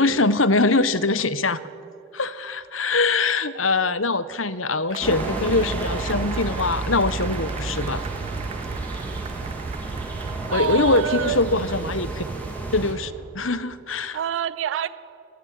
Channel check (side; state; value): both; normal; correlation -0.01